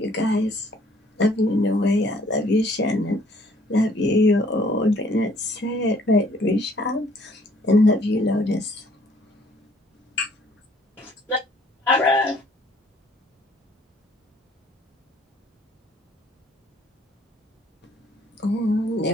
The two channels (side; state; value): both; normal; correlation 0.61